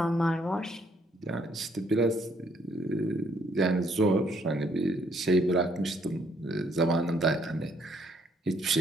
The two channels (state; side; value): normal; both; correlation 0.68